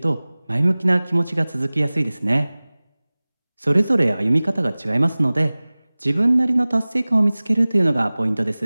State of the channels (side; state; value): both; inverted; correlation -0.99